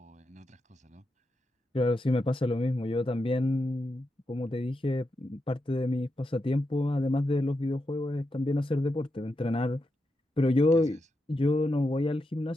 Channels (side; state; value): both; normal; correlation 0.86